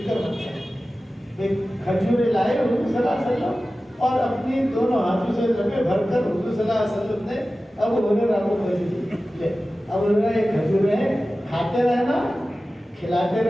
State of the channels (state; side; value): normal; both; correlation 0.95